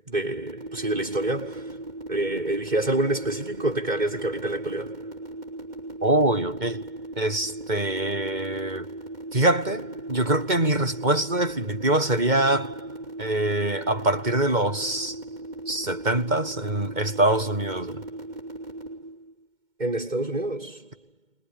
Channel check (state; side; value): late; left; 2.1 ms